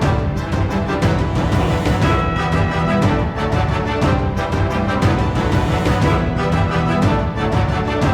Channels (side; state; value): both; identical; correlation 1.00